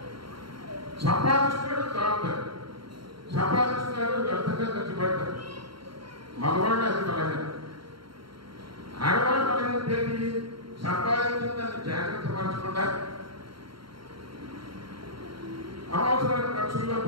సంపాదిస్తున్నాడు, తాగుతాడు, సంపాదిస్తున్నాడు, వ్యర్థంగా ఖర్చు పెడతాడు. మగవాళ్ళు అది బలహీన. ఆడవాళ్ళు బలహీన ఏంటి? సంపాదించిన దాన్ని జాగ్రత్త పరచకుండా అవసరమైన ఖర్చుల్లో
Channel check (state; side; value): late; left; 0.73 ms